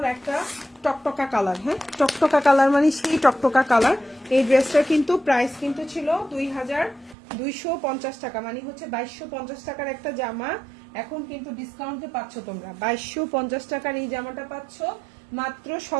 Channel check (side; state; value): left; drops out; at 7.2 s